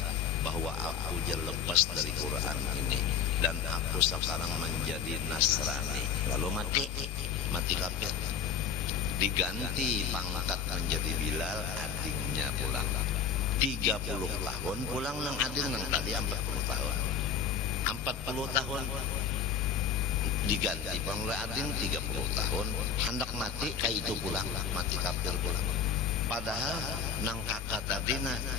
bahwa aku jangan lepas dari Quran ini dan aku sekarang menjadi Nasrani. Lalu mati kafir, diganti pangkat menjadi Bilal, adingnya pulang. 30 tahun pulang nang ading nang tadi 40 tahun 40 tahun diganti panggil ading 30 tahun hendak mati kayak itu pulang mati kafir pulang. Padahal nang kakak tadi nah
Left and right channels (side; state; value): right; quieter; 7.0 dB